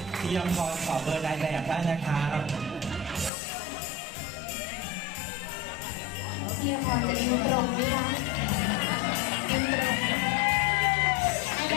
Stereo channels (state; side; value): drops out; right; at 3.3 s